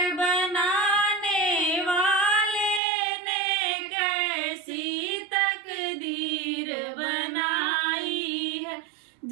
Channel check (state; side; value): drops out; left; at 2.8 s